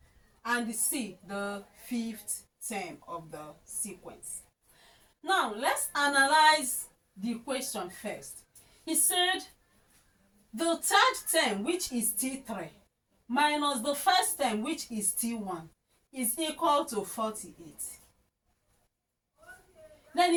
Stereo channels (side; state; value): both; identical; correlation 1.00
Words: and C, the 5th term of the sequence. Now, let's analyze the question first. He said the 3rd term, which is T3, minus the 1st term, which is T1, is equal to 48. Then